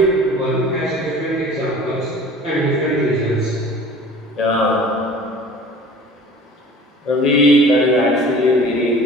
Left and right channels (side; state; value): both; normal; correlation 0.45